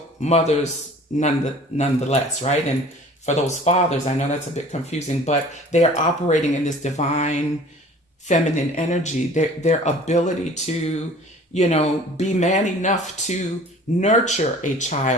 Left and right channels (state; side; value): normal; both; correlation 0.47